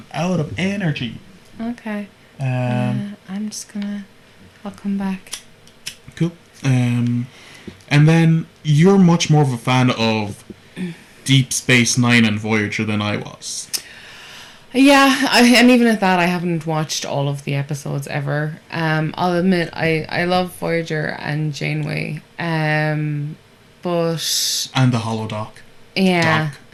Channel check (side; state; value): both; identical; correlation 1.00